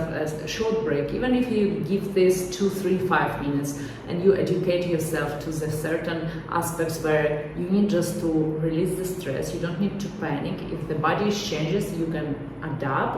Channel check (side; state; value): both; identical; correlation 1.00